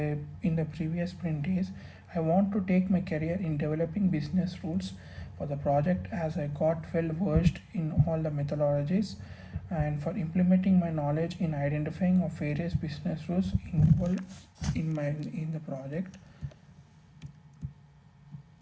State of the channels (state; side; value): identical; both; correlation 1.00